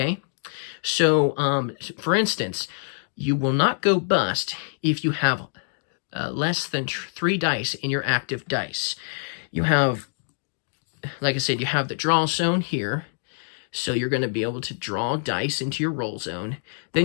So, for instance, you will not go bust if you have less than 3 dice in your active dice. You have, like I said, you have the draw zone here. So you're going to be able to draw dice into your roll zone.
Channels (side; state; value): right; silent; digital silence